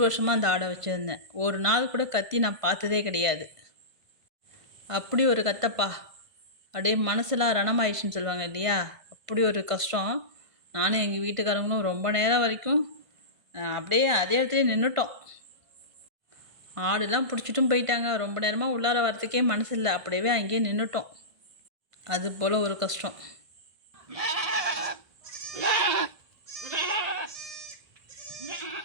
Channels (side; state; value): left; late; 1.5 ms